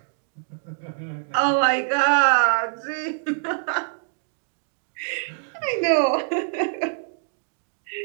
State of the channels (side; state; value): left; silent; digital silence